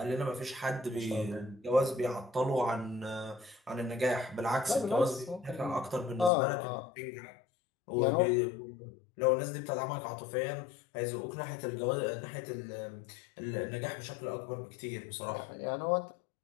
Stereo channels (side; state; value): right; drops out; at 6.3 s